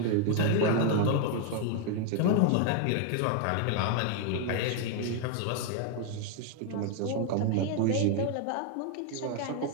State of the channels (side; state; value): both; different; correlation 0.00